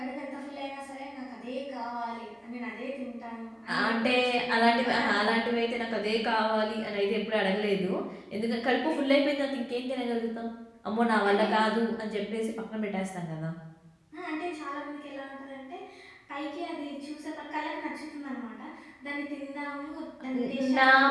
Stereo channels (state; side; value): identical; both; correlation 1.00